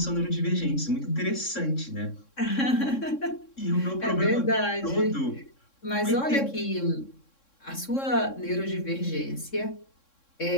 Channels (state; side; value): late; right; 3.6 ms